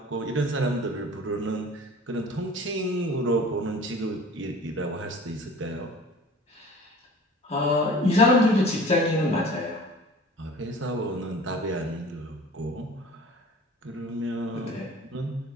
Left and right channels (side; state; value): both; normal; correlation 0.43